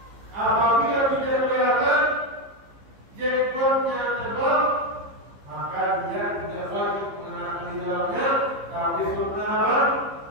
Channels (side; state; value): left; late; 15 ms